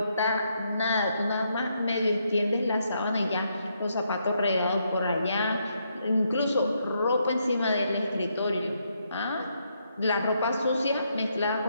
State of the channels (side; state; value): both; inverted; correlation -0.77